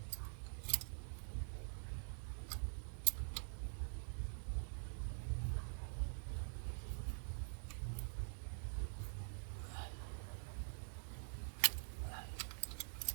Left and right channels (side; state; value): left; silent; digital silence